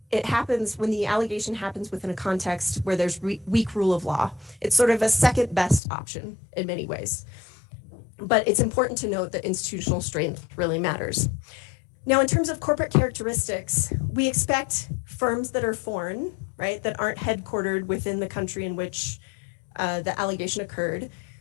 it happens, when the allegation happens within a context where there's weak rule of law. It's sort of a second best option in many ways. But it's important to note that institutional strength really matters. Now, in terms of corporate characteristics, we expect firms that are foreign, right, that aren't headquartered within the country in which the allegation occurred,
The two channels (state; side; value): drops out; right; at 5.8 s